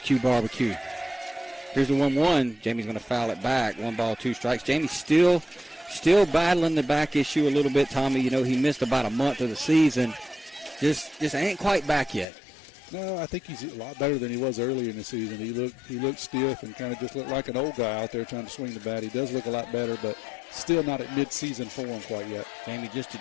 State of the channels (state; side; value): drops out; right; at 12.2 s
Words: Barbecue. Here's the 1-1. Jamie's going to foul it back. 1 ball, 2 strikes. Jamie's still battling the back issue a little bit, Tommy. He missed about a month of the season. Just ain't quite back yet. No, I think he's a lot better than he was earlier in the season. He looked stiff and kind of just looked like an old guy out there trying to swing the bat. He does look a lot better, but still not at mid-season form quite yet. Jamie just a